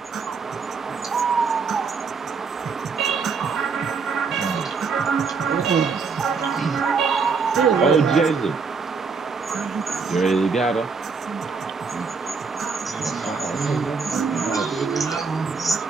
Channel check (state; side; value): quieter; left; 5.0 dB